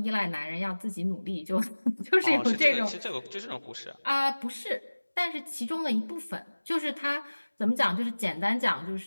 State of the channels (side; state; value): both; inverted; correlation -1.00